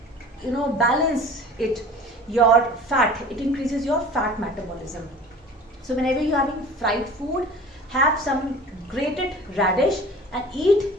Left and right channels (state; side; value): normal; both; correlation 0.42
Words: balance it, your fat. It increases your fat metabolism. So whenever you're having fried food, have some grated radish and eat